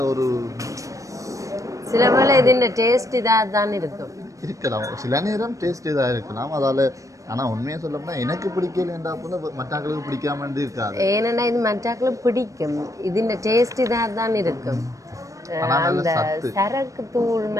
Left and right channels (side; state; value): left; late; 0.16 ms